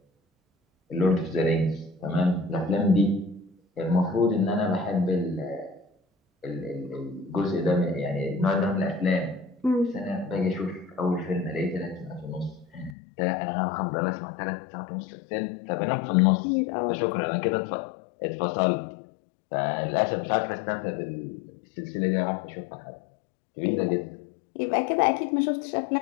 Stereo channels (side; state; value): right; drops out; at 13.0 s